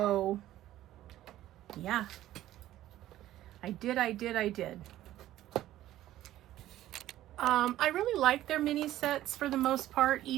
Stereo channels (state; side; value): quieter; left; 13.9 dB